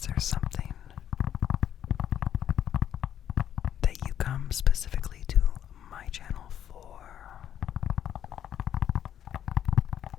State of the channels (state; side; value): quieter; right; 10.1 dB